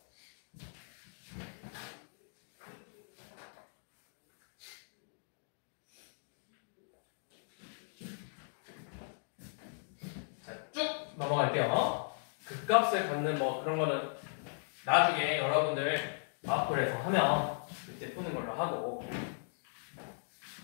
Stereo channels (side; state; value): right; silent; digital silence